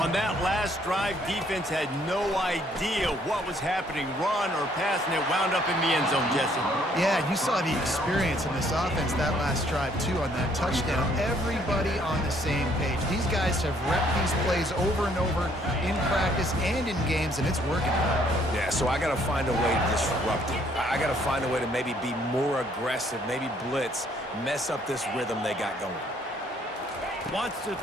that last drive, defense had no idea what was happening, run or pass, and it wound up in the end zone, Jesse. Yeah, you saw the experience in this offense that last drive, too, on that touchdown. Everybody on the same page. These guys have repped these plays over and over in practice and in games, and it's working. Yeah, so I got to find a way to disrupt it. I got to find a way to maybe be more aggressive, maybe blitz, mess up this rhythm they got going. Wants to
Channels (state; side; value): normal; both; correlation 0.65